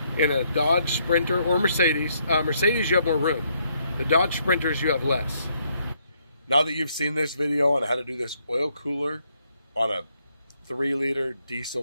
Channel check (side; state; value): both; inverted; correlation -0.72